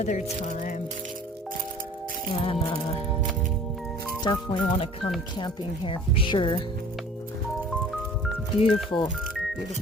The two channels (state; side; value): normal; both; correlation 0.48